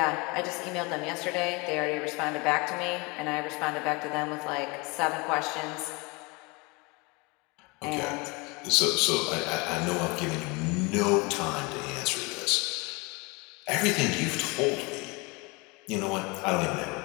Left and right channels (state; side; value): quieter; right; 27.3 dB